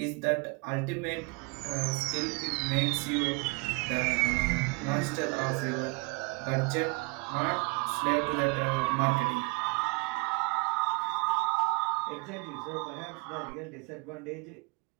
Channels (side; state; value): left; quieter; 29.2 dB